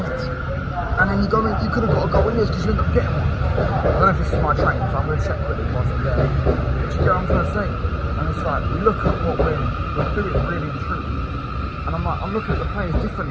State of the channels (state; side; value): identical; both; correlation 1.00